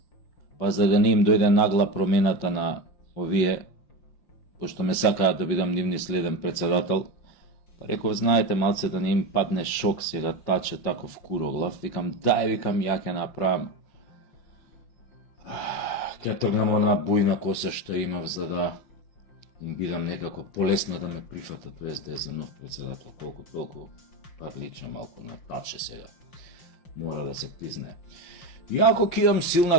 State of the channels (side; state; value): right; late; 5.6 ms